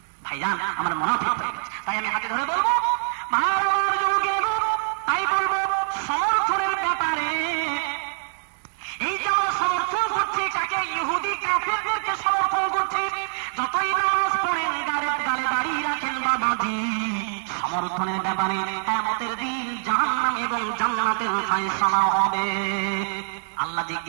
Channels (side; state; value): left; silent; 62 dB below the other